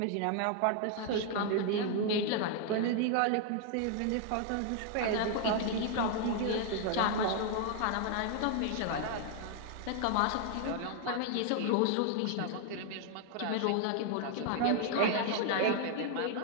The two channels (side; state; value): both; different; correlation 0.00